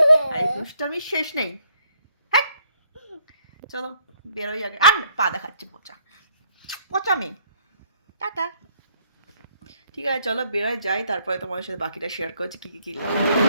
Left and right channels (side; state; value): both; inverted; correlation -0.67